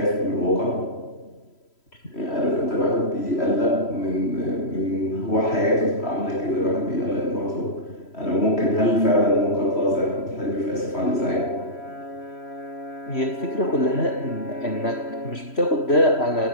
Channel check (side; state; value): right; late; 3.1 ms